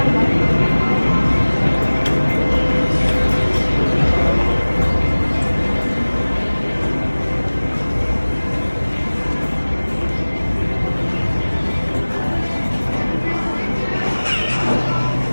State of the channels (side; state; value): both; inverted; correlation -1.00